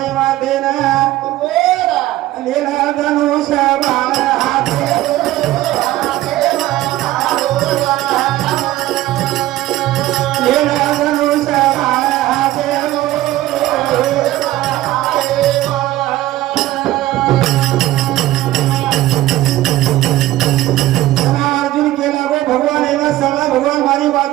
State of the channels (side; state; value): left; quieter; 15.7 dB